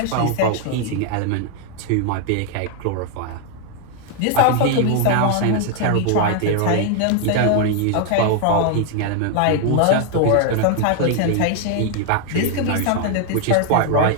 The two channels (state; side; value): different; both; correlation 0.00